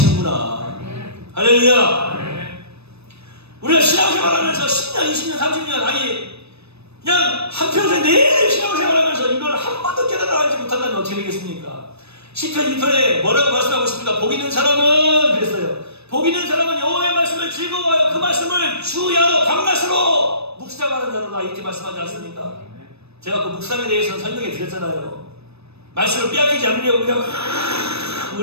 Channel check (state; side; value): late; left; 0.79 ms